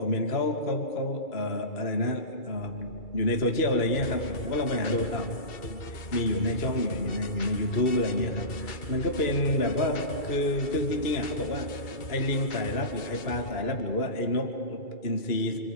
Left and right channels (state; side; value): late; right; 2.3 ms